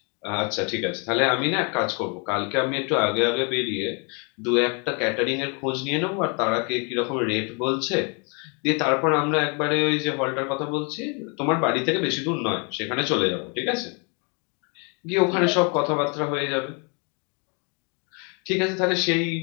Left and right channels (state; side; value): quieter; right; 35.2 dB